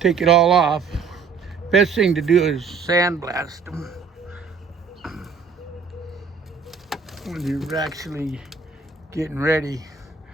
it all off, Best thing to do is sandblast them when you're actually getting ready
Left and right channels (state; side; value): quieter; left; 5.2 dB